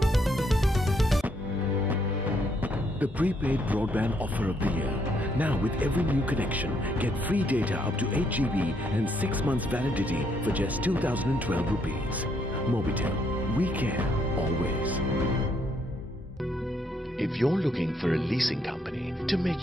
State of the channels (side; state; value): both; normal; correlation 0.73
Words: The prepaid broadband offer of the year. Now with every new connection, get free data up to 8 GB and 6 months validity for just 2012 rupees. Mobitel, we care always. If you're looking for a leasing company to make